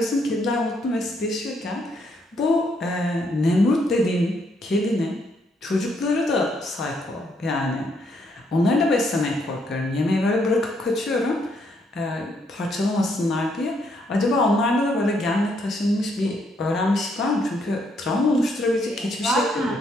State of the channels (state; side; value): normal; both; correlation 0.73